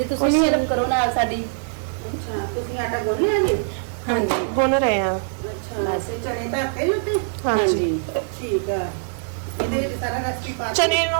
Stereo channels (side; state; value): left; silent; 63 dB below the other